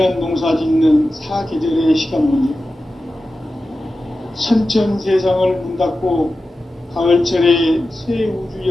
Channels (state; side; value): normal; both; correlation 0.93